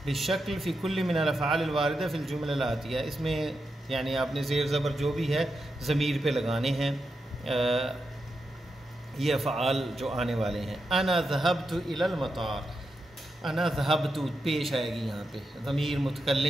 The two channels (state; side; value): normal; both; correlation 0.87